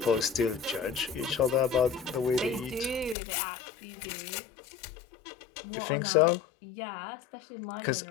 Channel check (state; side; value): drops out; right; at 3.2 s